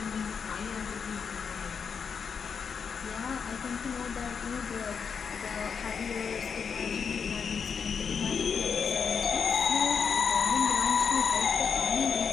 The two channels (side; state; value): right; quieter; 6.3 dB